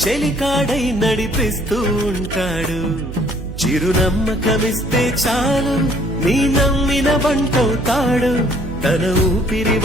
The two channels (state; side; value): noise; right; hum, 9 dB below the sound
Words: చెలికాడై నడిపిస్తూ ఉంటాడు చిరునమ్మకమిస్తే చాలు నీ నమ్మిన బంటవుతాడు తన ఊపిరి